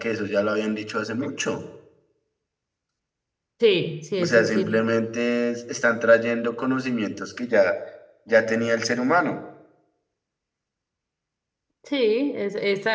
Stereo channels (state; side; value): identical; both; correlation 1.00